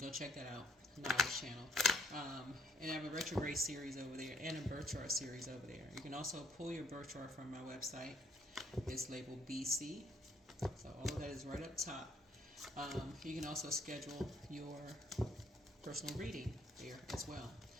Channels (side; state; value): both; normal; correlation 0.66